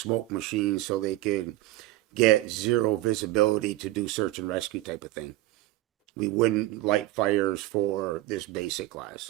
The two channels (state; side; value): quieter; left; 16.7 dB